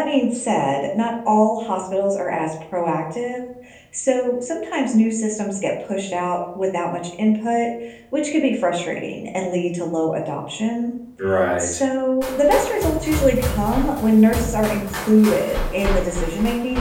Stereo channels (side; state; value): both; identical; correlation 1.00